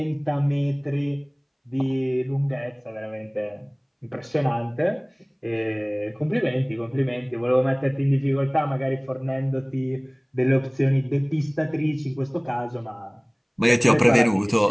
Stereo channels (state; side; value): identical; both; correlation 1.00